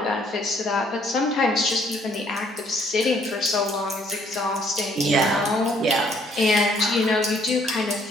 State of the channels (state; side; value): normal; both; correlation 0.64